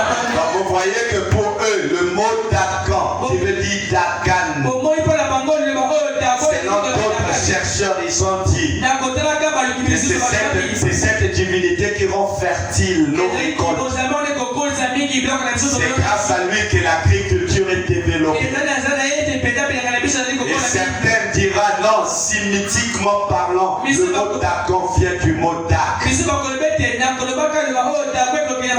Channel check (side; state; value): both; identical; correlation 1.00